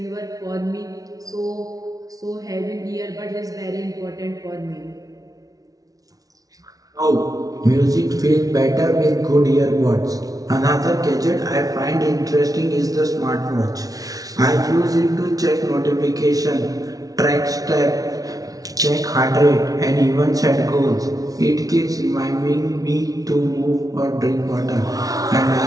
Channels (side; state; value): left; late; 0.18 ms